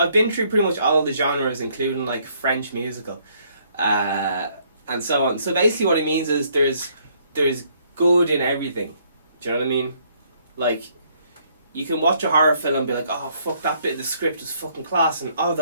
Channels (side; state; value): both; inverted; correlation -0.67